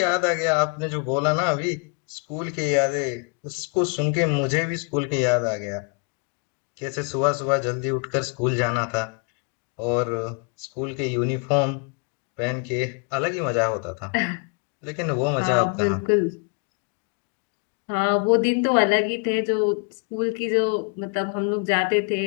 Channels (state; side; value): quieter; right; 36.6 dB